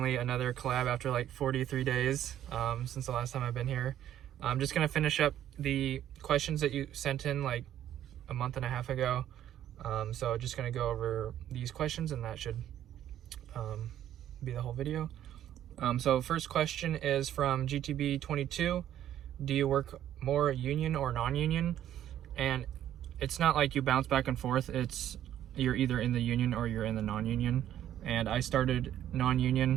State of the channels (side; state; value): left; quieter; 11.4 dB